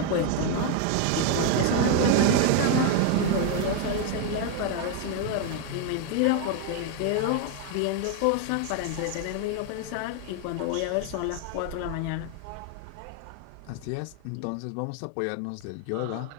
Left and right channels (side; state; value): both; different; correlation 0.01